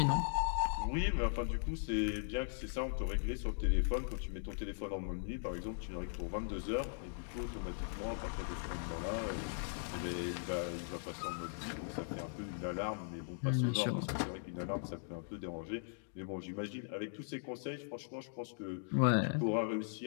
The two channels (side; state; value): right; silent; digital silence